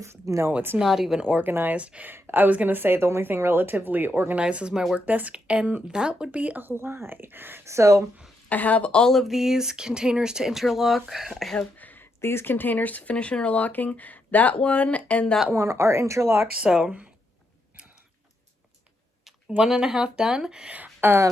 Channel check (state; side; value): normal; both; correlation 0.81